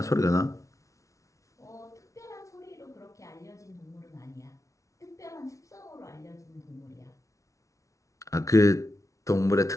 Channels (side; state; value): right; late; 0.15 ms